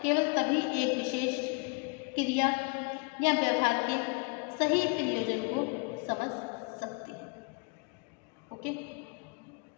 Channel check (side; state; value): right; quieter; 32.6 dB